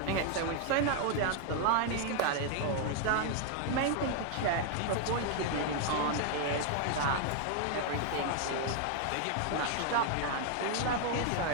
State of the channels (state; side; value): different; both; correlation 0.00